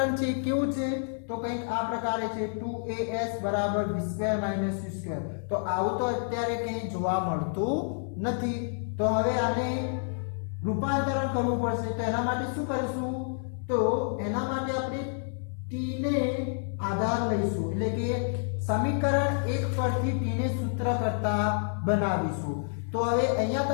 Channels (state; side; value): silent; right; 59 dB below the other